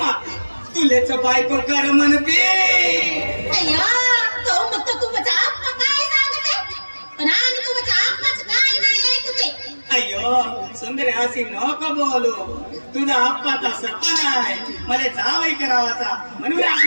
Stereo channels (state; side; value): inverted; both; correlation -1.00